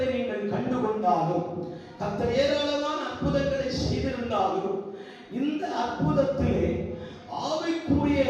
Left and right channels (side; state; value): both; identical; correlation 1.00